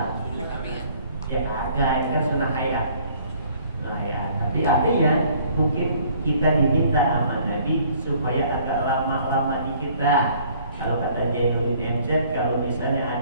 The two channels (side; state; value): both; inverted; correlation -0.58